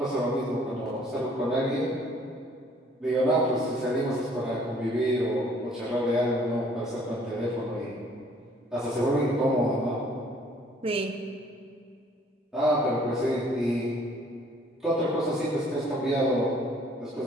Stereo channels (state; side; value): normal; both; correlation 0.58